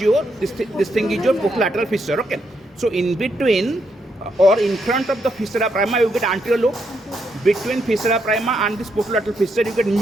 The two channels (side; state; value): both; normal; correlation 0.78